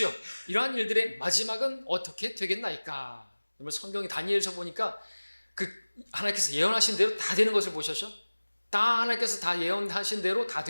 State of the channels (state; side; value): inverted; both; correlation -1.00